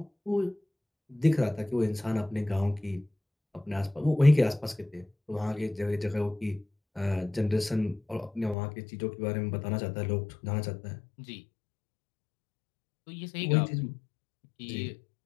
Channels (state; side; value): drops out; right; at 8.6 s